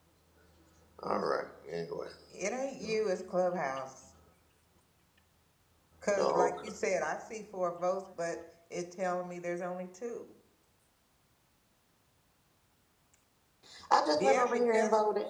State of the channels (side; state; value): both; identical; correlation 1.00